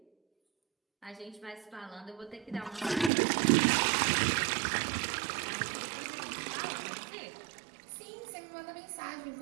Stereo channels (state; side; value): drops out; left; at 3.1 s